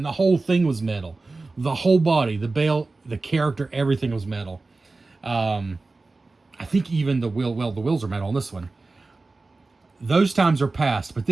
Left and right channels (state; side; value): quieter; left; 3.5 dB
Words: the whole thing was metal. The whole body, the belt, the character, everything was metal. I think even the wheel, well, the wheels are metal on this one. Those times are past, but